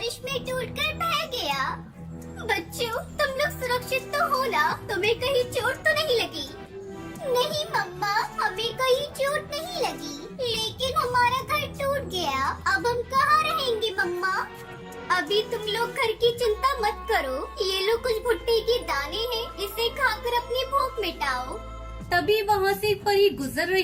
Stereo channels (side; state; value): both; identical; correlation 1.00